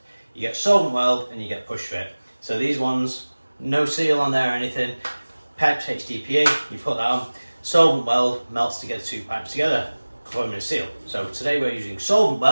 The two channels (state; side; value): inverted; both; correlation -1.00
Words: you get Solvent weld and you get push fit. So these ones, no seal on there or anything. Pipes HDPE, you put that on. Solvent weld melts together 2 pipes together, forming a seal. So today we're using Solvent